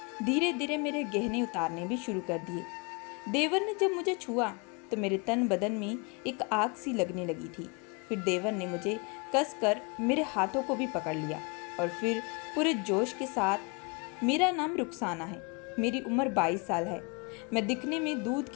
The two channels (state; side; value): quieter; right; 31.3 dB